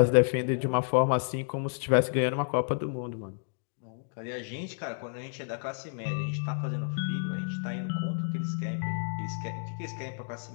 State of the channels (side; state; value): right; silent; digital silence